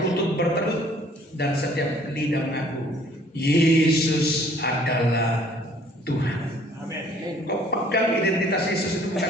lutut bertelut dan setiap lidah mengaku Yesus adalah Tuhan. Amin. Kau pegang identitas Yesus itu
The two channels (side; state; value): both; normal; correlation 0.58